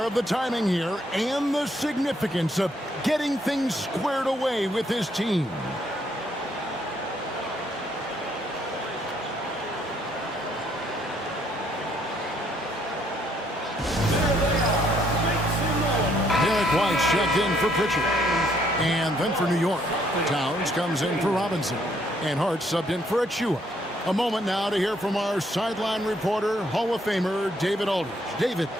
of the timing here and the significance of getting things squared away with his team. White's checked in for Pritchard. And then for New York, Towns comes in for Robinson. And Hart subbed in for Achua. A moment now to hear from our sideline reporter, Hall of Famer David Aldridge. David.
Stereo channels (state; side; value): normal; both; correlation 0.69